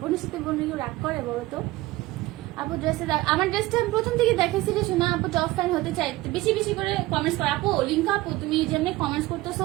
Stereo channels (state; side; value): quieter; left; 18.5 dB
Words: বোনের সাথে বোন রাগ করে বলো তো আপু ড্রেসে আমার ড্রেসটা আমি প্রথম থেকে দেখেছি যে শোনা আপু টপ ফ্যান হতে চাই বেশি বেশি করে কমেন্টস করো আপু লিঙ্কা আপু তুমি যেমনি কমেন্টস